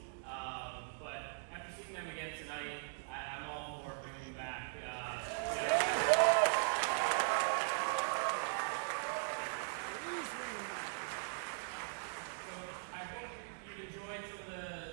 But after seeing them again tonight, I'm all for bringing them back. So I hope you enjoyed some of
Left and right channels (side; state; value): left; silent; digital silence